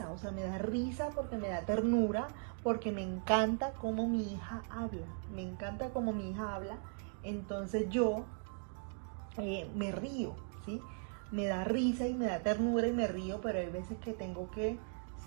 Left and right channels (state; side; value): silent; left; 52 dB below the other